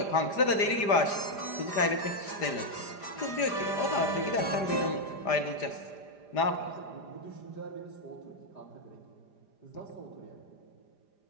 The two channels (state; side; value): late; right; 5.0 ms